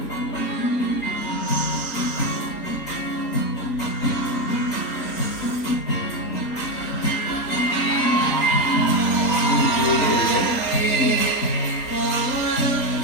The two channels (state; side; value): late; right; 3.7 ms